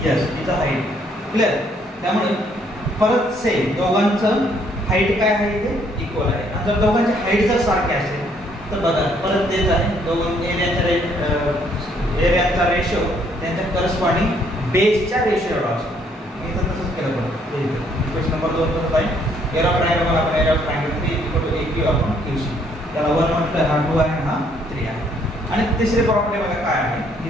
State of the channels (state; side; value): normal; both; correlation 0.67